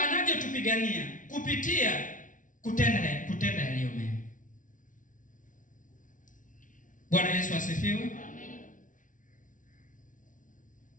kupitia kutenda yaliyo mema. Bwana Yesu asifiwe. Amen.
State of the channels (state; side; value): late; right; 0.38 ms